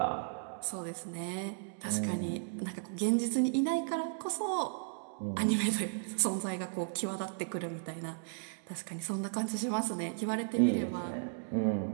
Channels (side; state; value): left; silent; digital silence